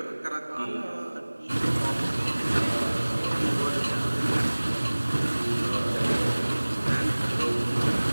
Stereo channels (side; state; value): both; inverted; correlation -1.00